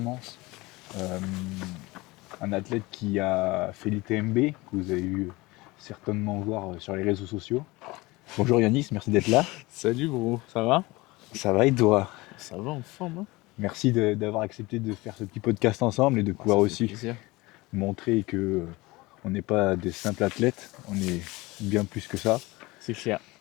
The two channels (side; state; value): right; quieter; 22.0 dB